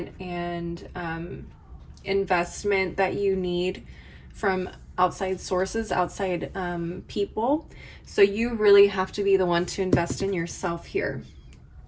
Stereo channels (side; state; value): both; identical; correlation 1.00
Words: and investment that you need from outside sources, outside people. So you really have to be the one to invest in yourself here.